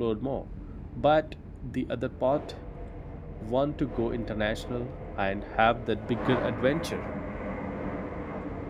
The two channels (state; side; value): identical; both; correlation 1.00